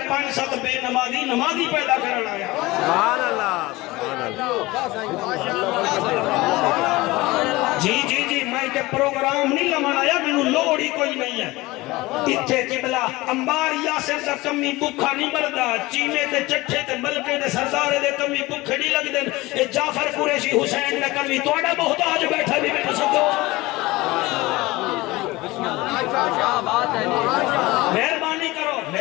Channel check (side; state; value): right; quieter; 20.5 dB